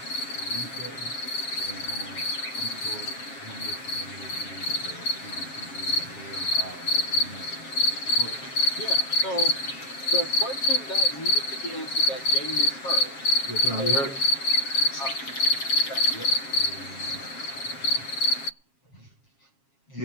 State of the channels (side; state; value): right; late; 7.4 ms